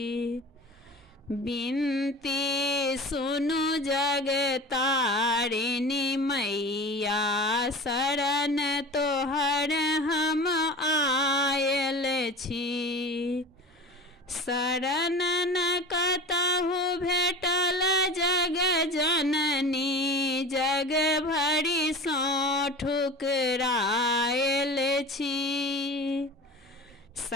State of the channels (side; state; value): both; normal; correlation 0.35